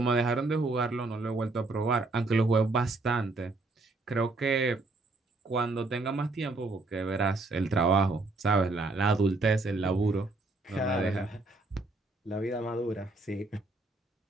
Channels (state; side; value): quieter; left; 3.2 dB